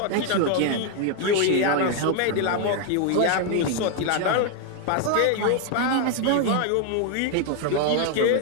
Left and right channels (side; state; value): both; different; correlation 0.01